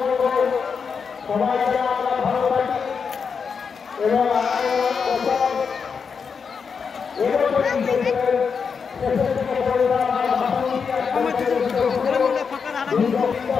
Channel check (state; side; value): quieter; right; 5.9 dB